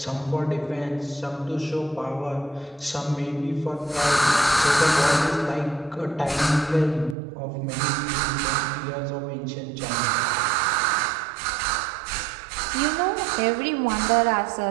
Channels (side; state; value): left; drops out; at 7.2 s